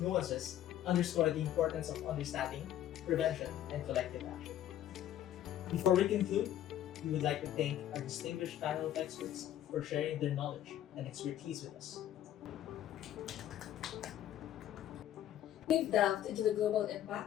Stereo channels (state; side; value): quieter; right; 11.8 dB